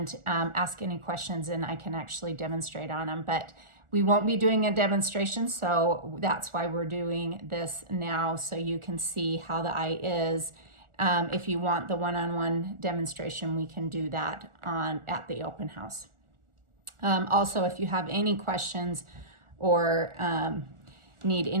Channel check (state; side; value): late; left; 1.4 ms